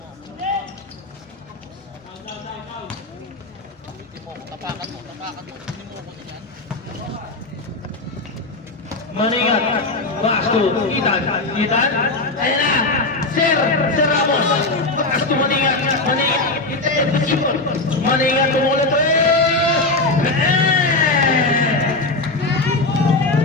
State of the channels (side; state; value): right; quieter; 3.2 dB